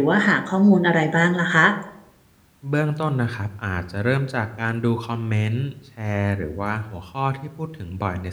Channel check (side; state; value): both; identical; correlation 1.00